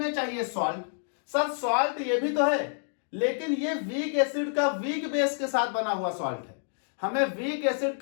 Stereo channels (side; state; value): right; silent; digital silence